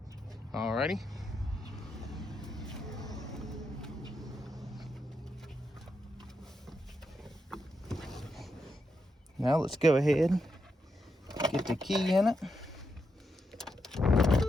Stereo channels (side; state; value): both; normal; correlation 0.84